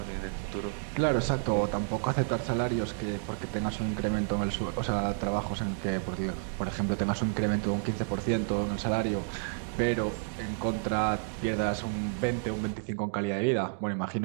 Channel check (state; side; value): silent; left; digital silence